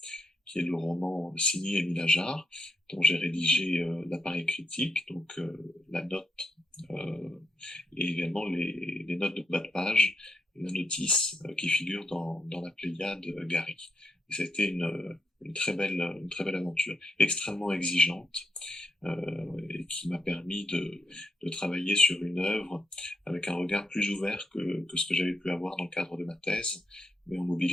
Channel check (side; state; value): both; normal; correlation 0.80